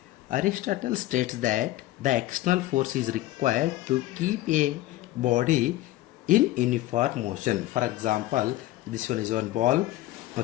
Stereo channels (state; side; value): quieter; right; 16.0 dB